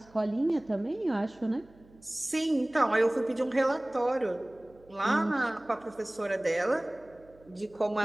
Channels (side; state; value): right; noise; hum, 27 dB below the sound